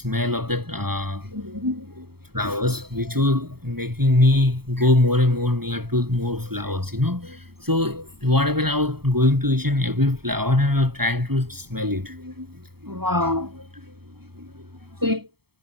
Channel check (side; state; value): left; late; 0.96 ms